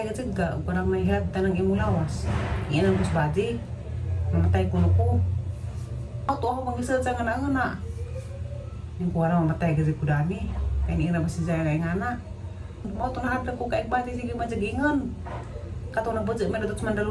ka jud ka, ug parang mahilabtan ng imong lawas. Yan ang kusbaji. Mamatay kuno ko. Ato ako pangisad sa ngana-ngana. Yung kuwara mamatay ka jud ko dani. Kaya ni ina basi siya kay ngana. Mao to nahadlok ko kay bati sige majagingon. Kato na budget man datot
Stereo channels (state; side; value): identical; both; correlation 1.00